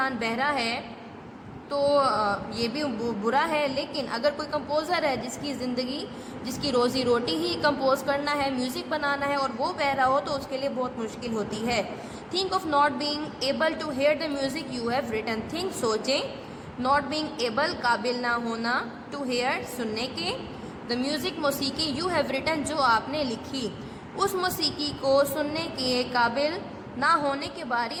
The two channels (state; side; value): identical; both; correlation 1.00